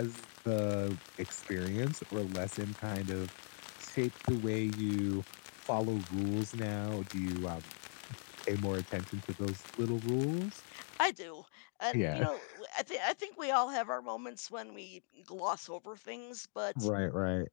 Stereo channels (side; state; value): right; silent; 52 dB below the other